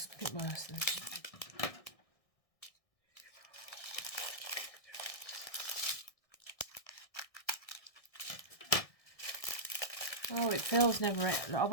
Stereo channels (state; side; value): late; right; 1.6 ms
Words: a bit worse than this. Oh, it feels never. I